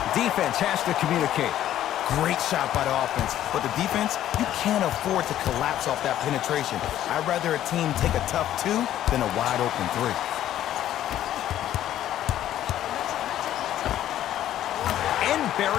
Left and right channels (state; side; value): quieter; right; 12.2 dB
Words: Defense has to communicate. Great shot by the offense. But the defense, you can't afford to collapse off that penetration. I'd rather a team take a tough two than a wide-open three.